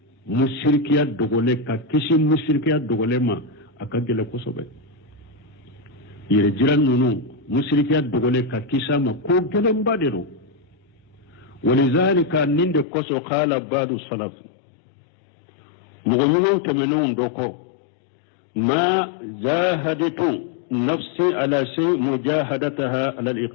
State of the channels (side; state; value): right; drops out; at 12.9 s